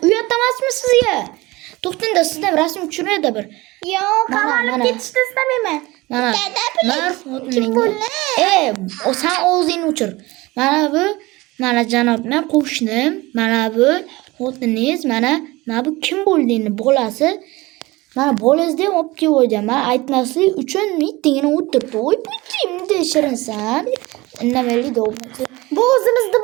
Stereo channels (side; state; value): left; quieter; 21.2 dB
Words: uyat emasmi sizga? To'xtangda, sizdan rasm tushiradi bir. Yo'q, qamalib ketishni istamayman. Mana. Kim bo'ldi? Sen o'zingni o'chir. Mana janob, men qo'shnim. Mana bu xotiningiz, mana bu kim bo'ldi bolasi? Mana bolangizda ham olib kelib qo'ydim. Men aytmaslik uchun mitingini o'tirdi. Voy bunday shirinsan. Indamaylik dog'masi. Bu o'zimizni